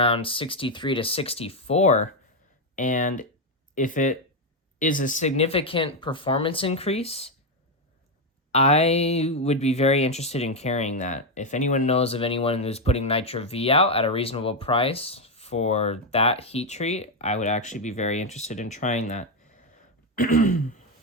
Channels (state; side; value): normal; both; correlation 0.05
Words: 63 to 64. And if it is a significant performance increase, I would be very interested in carrying that. If anyone knows of anyone who's putting Nitro V out at a reasonable price for that heat treat, I would actually be very interested in trying that.